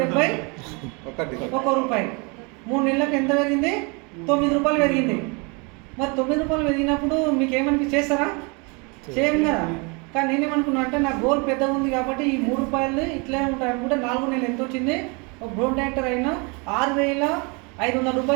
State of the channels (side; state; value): left; quieter; 31.2 dB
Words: రూపాయి. 3 నెలలకు ఎంత పెరిగింది? 9 రూపాయలు పెరిగింది. మరి 9 రూపాయలు పెరిగినప్పుడు మీకు ఏమనిపించి చేస్తారా? చేయం కదా. కానీ నేనేమనుకున్నా అంటే నా గోల్ పెద్దగా ఉంది కాబట్టి ఈ 3 రూపాయలు ఇట్లే ఉంటాయి అనుకుంటే 4 నెలలు ఎంత వచ్చింది? ఒక డ్రోన్ డైరెక్టర్ అయినా 6,500